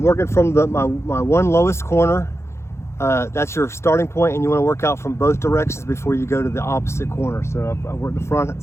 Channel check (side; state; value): right; late; 0.13 ms